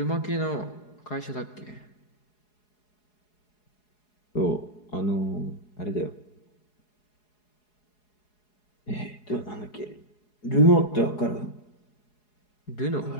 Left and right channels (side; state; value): right; late; 4.8 ms